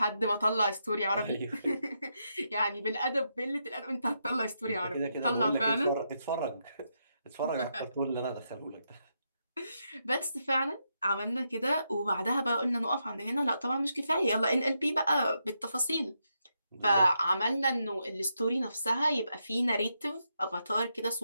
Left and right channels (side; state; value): both; inverted; correlation -0.82